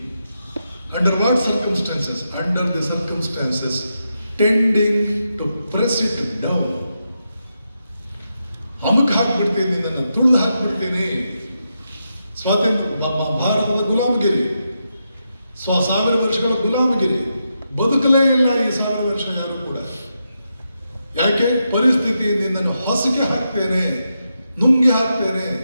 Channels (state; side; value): inverted; both; correlation -0.85